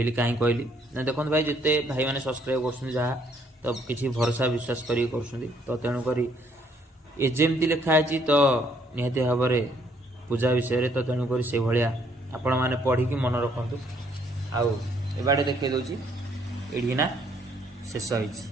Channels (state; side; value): normal; both; correlation 0.67